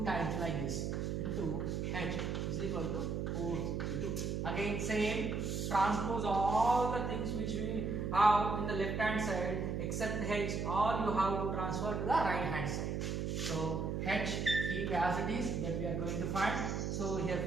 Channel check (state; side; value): noise; right; hum, 1 dB below the sound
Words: times like this into H is equal to 462. Again same, transpose all the things which we have in the left hand side except H, all you have to transfer to the right hand side. So H keep as it is, that we are going to find. So here